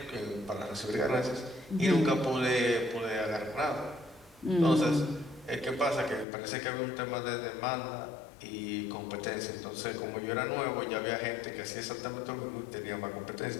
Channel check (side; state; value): right; drops out; at 6.2 s